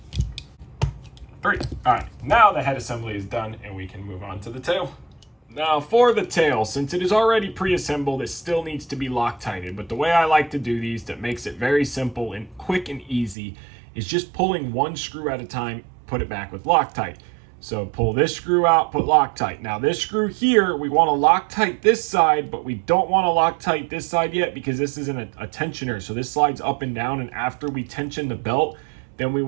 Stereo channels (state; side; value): drops out; left; at 13.4 s